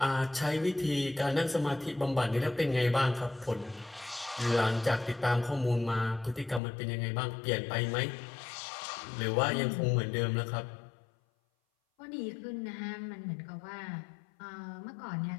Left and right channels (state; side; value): drops out; right; at 6.6 s